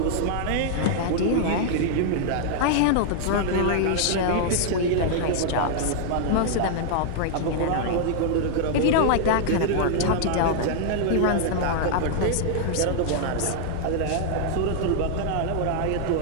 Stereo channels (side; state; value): both; different; correlation -0.01